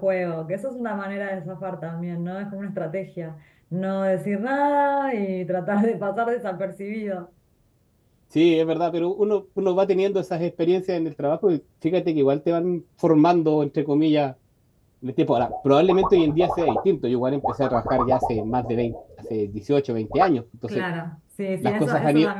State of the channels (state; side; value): identical; both; correlation 1.00